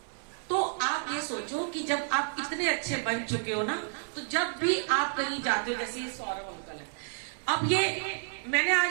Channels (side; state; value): left; silent; 58 dB below the other